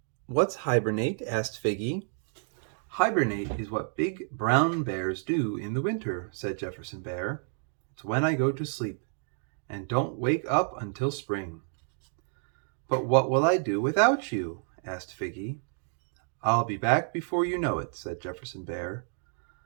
"What's hibernate?" asked Figgy. "Hibernate is what big brown bears do in the winter," said Jefferson Bear. "It's when I go to sleep and don't wake up until spring." "But what will I do without you?" asked Figgy. "I'll be back before you know it," said Jefferson Bear.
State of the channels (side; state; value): left; silent; 58 dB below the other